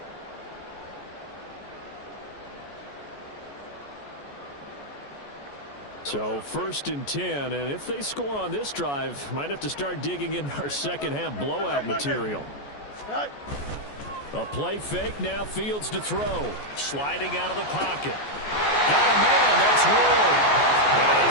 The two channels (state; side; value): late; right; 14 ms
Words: So 1st and 10, and if they score on this drive, might have to start digging in our second-half blowout material. A play fake, now Fields to throw. Sliding out of the pocket. Got a man, that's Roy. And